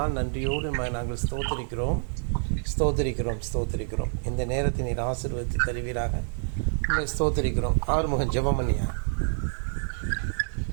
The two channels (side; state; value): left; silent; digital silence